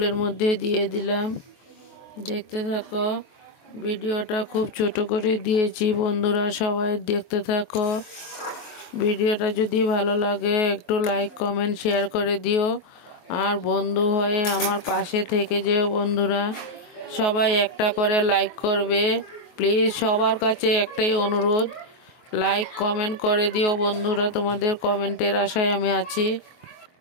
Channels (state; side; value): late; right; 23 ms